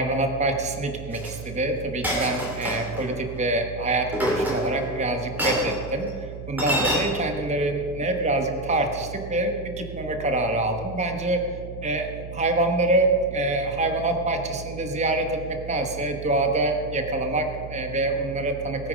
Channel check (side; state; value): right; noise; hum, 11 dB below the sound